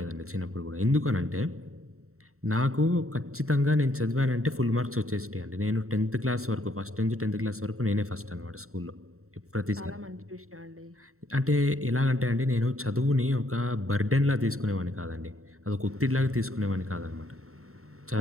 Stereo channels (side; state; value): left; late; 0.63 ms